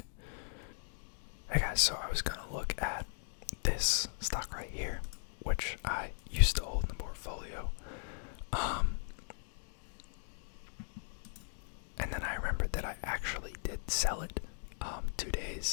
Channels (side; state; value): right; silent; digital silence